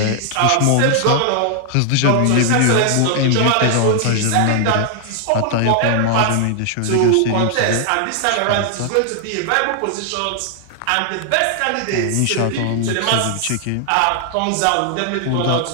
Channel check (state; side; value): different; both; correlation 0.00